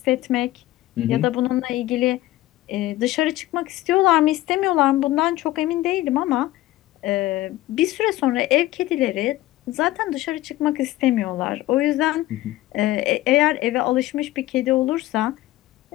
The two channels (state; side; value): quieter; right; 16.3 dB